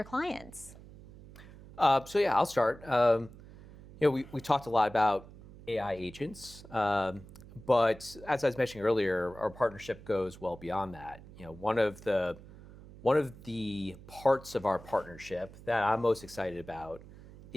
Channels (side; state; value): right; noise; hum, 18 dB below the sound